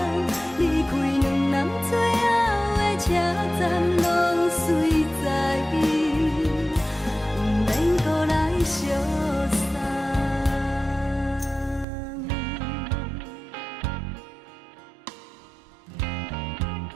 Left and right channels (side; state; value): left; drops out; at 11.9 s